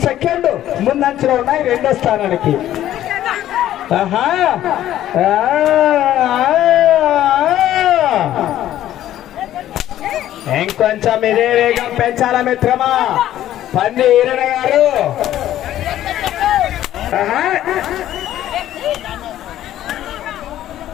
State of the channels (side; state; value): right; quieter; 12.7 dB